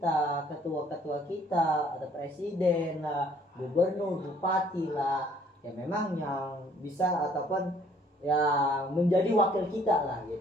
ketua-ketua kita, atau presiden lah, gubernur, bupati lah, ya memang yang bisa ataupun yang menjadi wakil kita lah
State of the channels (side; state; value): both; normal; correlation 0.60